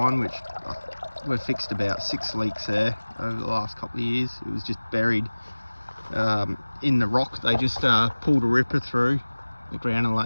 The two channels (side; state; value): both; inverted; correlation -1.00